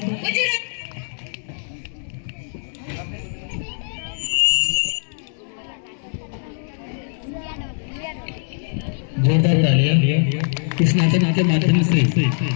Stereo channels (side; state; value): right; silent; 64 dB below the other